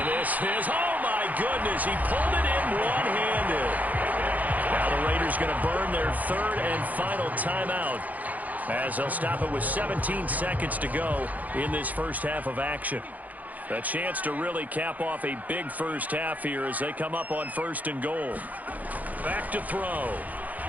this is, oh my goodness, he pulled it in one-handed. Now the Raiders going to burn their 3rd and final timeout as they'll stop it with 17 seconds to go in this first half of action. A chance to really cap off a big first half here as they come up on 1st and goal. Back to throw.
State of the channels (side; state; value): left; late; 0.080 ms